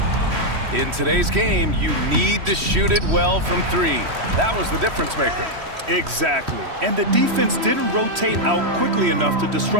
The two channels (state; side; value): late; left; 3.1 ms